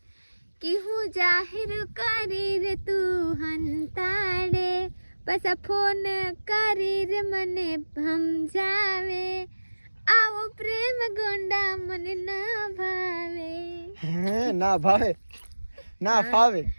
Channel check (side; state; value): both; inverted; correlation -1.00